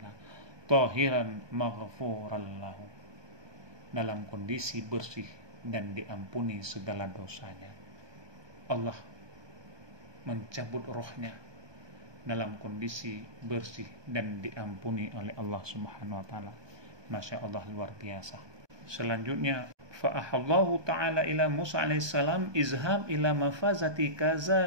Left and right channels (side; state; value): left; late; 1.2 ms